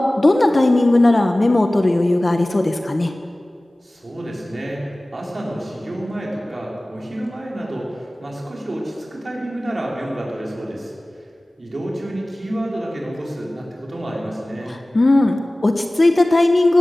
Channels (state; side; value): normal; both; correlation 0.98